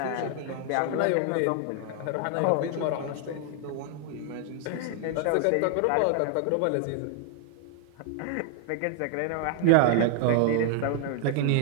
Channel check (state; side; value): different; both; correlation 0.00